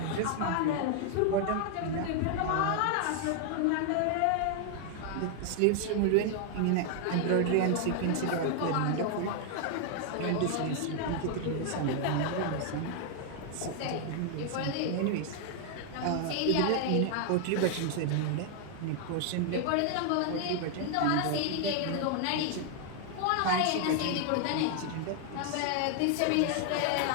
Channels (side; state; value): both; different; correlation 0.00